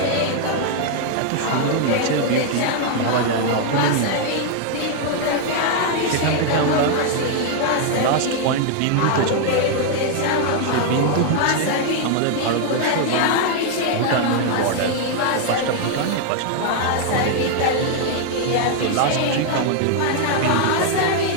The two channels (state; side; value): different; both; correlation 0.00